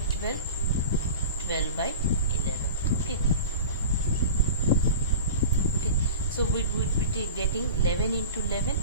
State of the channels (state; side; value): inverted; both; correlation -0.34